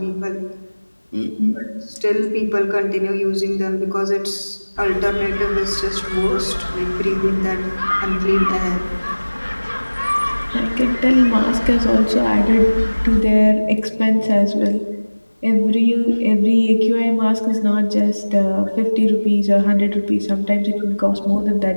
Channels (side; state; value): both; inverted; correlation -1.00